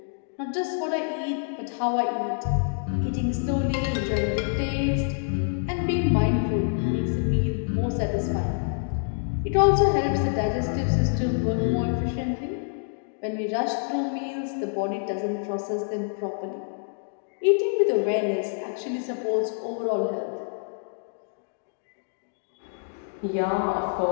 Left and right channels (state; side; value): silent; right; digital silence